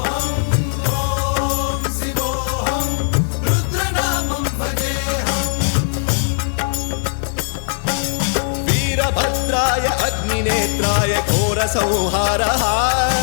वीरभद्राय अग्निनेत्राय घोरसंहारः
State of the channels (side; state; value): right; silent; digital silence